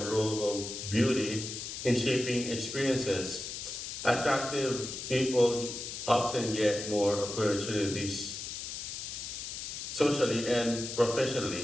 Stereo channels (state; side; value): noise; left; hiss, 7 dB below the sound